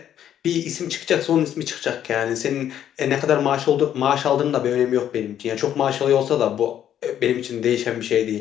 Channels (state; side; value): quieter; right; 10.4 dB